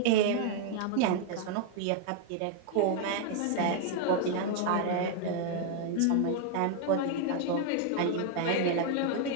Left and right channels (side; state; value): both; different; correlation 0.00